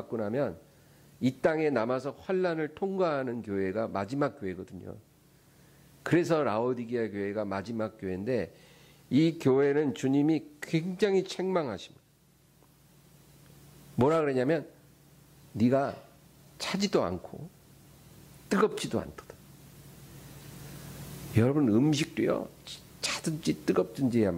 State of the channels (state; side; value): identical; both; correlation 1.00